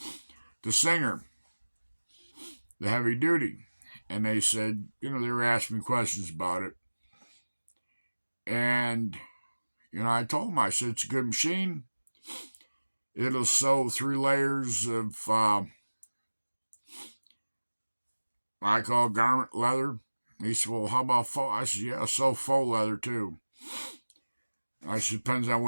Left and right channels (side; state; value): both; inverted; correlation -1.00